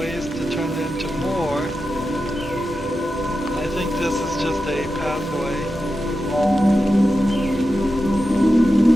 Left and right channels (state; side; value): normal; both; correlation 0.90